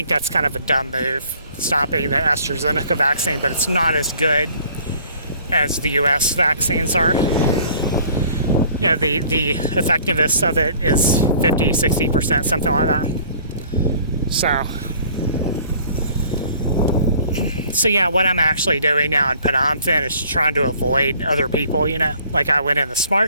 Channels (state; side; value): inverted; both; correlation -0.54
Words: that's kind of a dumb move, stopping the AstraZeneca vaccine, but it's not as good as the US vaccines are. The effectiveness of it is 50-60%, something like that. So yeah, what I'm actually doing now in Phnom is trying to avoid other people, Like I went in the